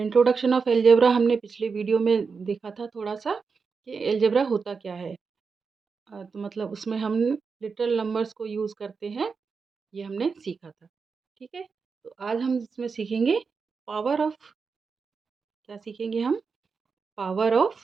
ऑफ एलजेब्रा। हमने पिछले वीडियो में देखा था थोड़ा सा कि एलजेब्रा होता क्या है। तो मतलब उसमें हम लिटरल नंबर्स को यूज़ करते हैं, ये हमने सीखा था। ठीक है, तो आज हम इसमें सीखेंगे पावर ऑफ, क्या सीखेंगे हम? Power of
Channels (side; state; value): left; quieter; 5.2 dB